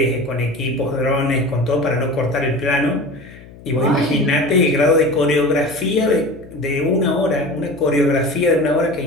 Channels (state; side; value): noise; left; hum, 20 dB below the sound